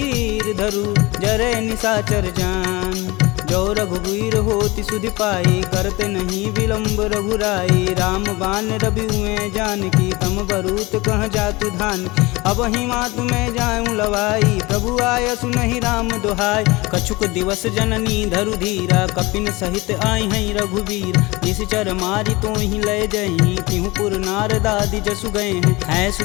धरु जरे निशाचर जान जो रघुवीर होति सुधि पाई करते नहीं विलंब रघुराई राम बान रवि हुए जानकी तम बरूत कह जातु धान अब ही मातु में जाऊं लवाई प्रभु आय सुनहि राम दुहाई कछुक दिवस जननी धरु धीरा कपिन सहित आई हैं रघुवीर निश्चर मारी तो ही लय जही तिहु पुर नारदादि जसु गए हैं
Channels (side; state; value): right; quieter; 22.6 dB